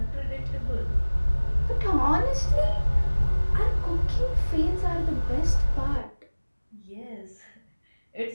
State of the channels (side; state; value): both; inverted; correlation -1.00